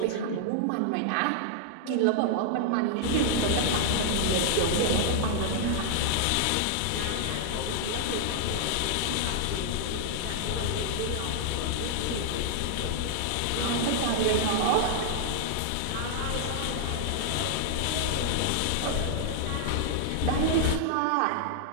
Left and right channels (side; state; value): both; different; correlation -0.01